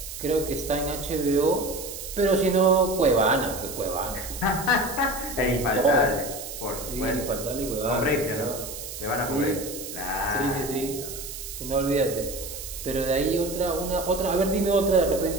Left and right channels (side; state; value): right; noise; hiss, 9 dB below the sound